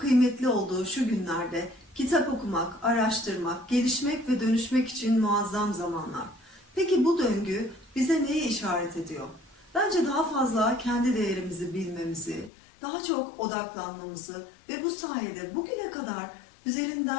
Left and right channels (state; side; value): drops out; right; at 12.5 s